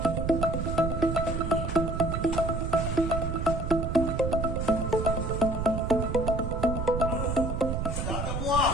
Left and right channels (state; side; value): noise; right; rumble, 2 dB below the sound